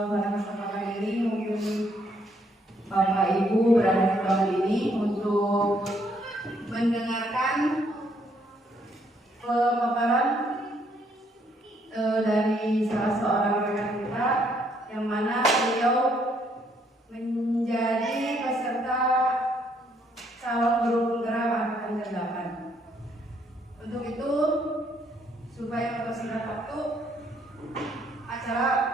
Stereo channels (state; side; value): normal; both; correlation 0.70